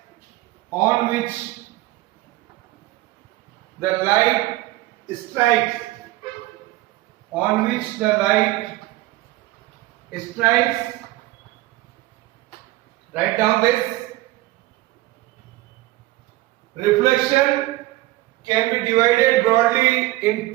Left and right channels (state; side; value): quieter; left; 18.2 dB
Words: on which the light strikes, Write down this. Reflection can be divided broadly in